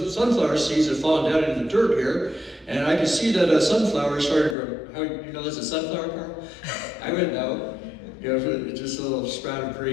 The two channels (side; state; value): right; drops out; at 4.5 s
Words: sunflower seeds have fallen down into the dirt here. And I can see that a sunflower started to grow." How you know there's a sunflower, Carl? I wouldn't know. Just a little sprout of